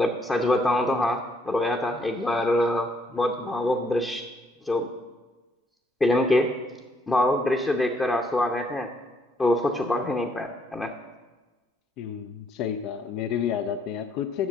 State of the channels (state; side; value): normal; both; correlation 0.70